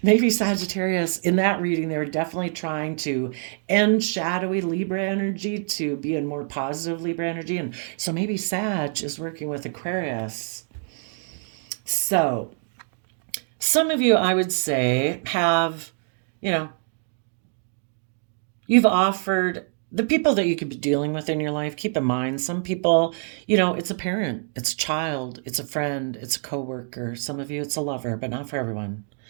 Maybe Sagittarius, in that reading, they were definitely trying to end shadowy Libra energy to be in more positive Libra energy. And so maybe Sag is working with Aquarius. So, some of you, I would say, have, you've offered the people that you could be dealing with in your life. Keep in mind, some people, it's a parent, it's a child, it's a friend, it's a coworker. Some of you, it's a lover, but not for everyone.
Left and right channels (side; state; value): left; silent; 61 dB below the other